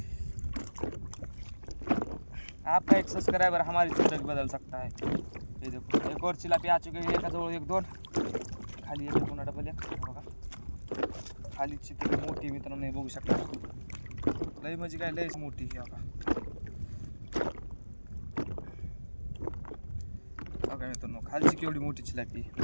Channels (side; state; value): both; inverted; correlation -1.00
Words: आपका एक सब्सक्राइबर हमारी जिंदगी बदल सकता है. ये देखो एक और चिलापी आ चुके हैं, एकाजवळ एक दोन, खाली एक पुन्हा डबल एक बघा. खाली चितळी मोठी मित्रांनो हे बघू शकता, लई म्हणजे काय लईच मोठी ही बघा. बघा मित्रांनो खालची केवढी मोठी चिलापी,